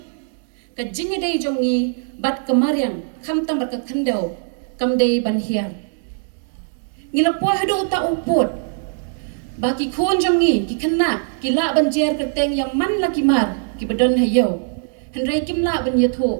kajing dei jongi bat kemaryang khamtang bat khandau kamdei ban hiar ngilapo hado ta uput baki khon jangi ki khna ki la banjer kerteng yang man la ki mar ki badon hayo hendrai kim la ban yatho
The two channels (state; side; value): silent; left; digital silence